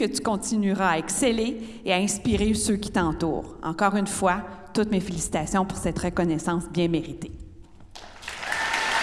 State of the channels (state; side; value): identical; both; correlation 1.00